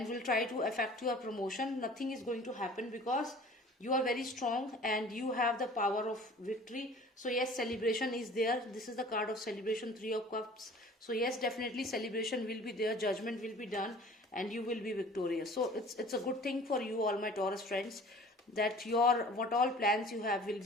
will try to affect your promotion, nothing is going to happen, because you are very strong and you have the power of victory. So yes, celebration is there. This is the card of celebration, 3 of Cups. So yes, definitely celebration will be there, judgment will be done, and you will be victorious. So it's a good thing for you, all my Taurus friends, that your what all plans you have will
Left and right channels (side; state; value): both; normal; correlation 0.47